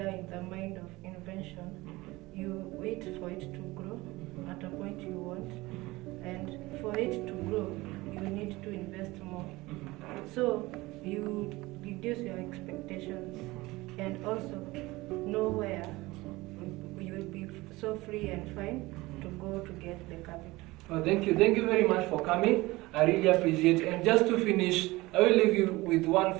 in the mind of invention. You wait for it to grow at a point you want, and for it to grow, you need to invest more. So you reduce your expectations, and also know where you will be so free and fine to go to get the capital. Oh, thank you very much for coming. I really appreciate it. And just to finish, I will leave you with one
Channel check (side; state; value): left; quieter; 20.5 dB